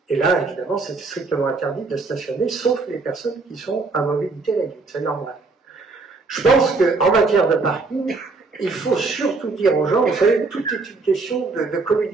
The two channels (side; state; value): left; quieter; 3.9 dB